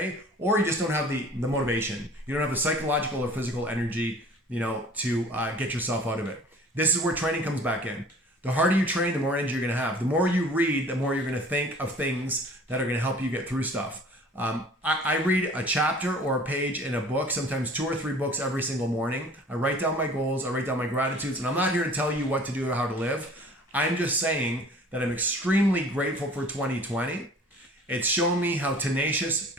or you just don't have the motivation. You don't have the psychological or physical energy, to get yourself out of it. This is where training comes back in. The harder you train, the more energy you're going to have. The more you read, the more you're going to think of things that are going to help you get through stuff. I read a chapter or a page in a book, sometimes 2 or 3 books every single morning. I write down my goals, I write down my gratitudes, and I'm not here to tell you what to do or how to live. I'm just saying that I'm extremely grateful for 2020. It's shown me how tenacious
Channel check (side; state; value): both; normal; correlation 0.48